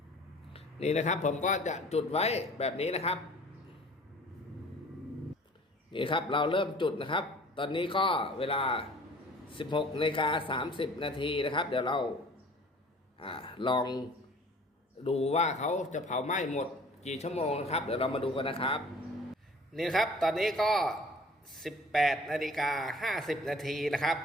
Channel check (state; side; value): normal; both; correlation 0.49